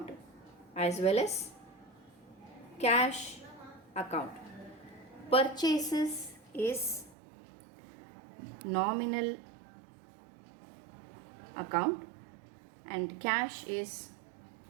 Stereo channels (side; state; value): left; drops out; at 7.2 s